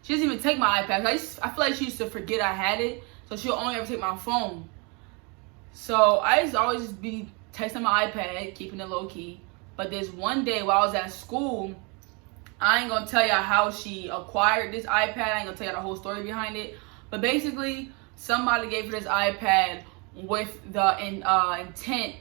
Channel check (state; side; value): quieter; left; 31.6 dB